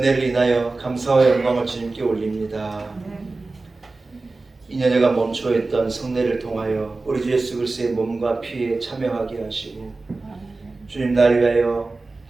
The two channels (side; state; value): left; quieter; 3.5 dB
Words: 인하여 감사와 영광을 주님께 올립니다. 2년여간 멈춰있던 성례를 통하여 우리 주 예수 그리스도의 몸과 피에 참여하게 하시고 주님 나를 위하여